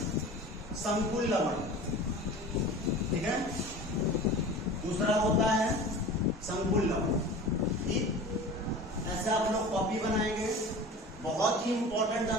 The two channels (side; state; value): both; normal; correlation 0.37